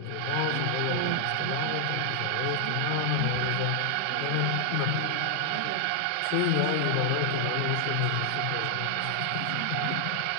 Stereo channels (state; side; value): different; both; correlation 0.00